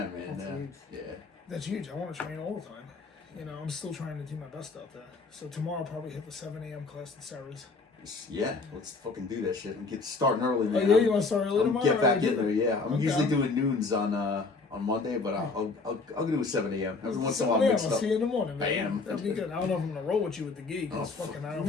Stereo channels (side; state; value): right; quieter; 4.0 dB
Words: man. That's huge. Yeah. That's huge. I want to train all the time. I'm still trying to do my best out there. So tomorrow I'll probably hit the 7 a.m. class at Sarah's. Yeah, let's fucking do that shit. I'm starting early, man. Oh, yeah, you want to start early tomorrow? Get back in there, yeah. I'm usually doing noons on on Monday, but I'll do a 7 a.m. Every once in a while, I'll mix it up. see you in the morning, man. I am. That'll be good. I don't know if I'm gonna roll with you with the gi because fucking I don't